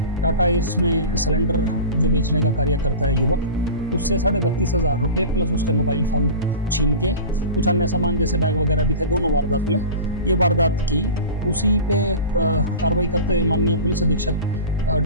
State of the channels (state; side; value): inverted; both; correlation -0.34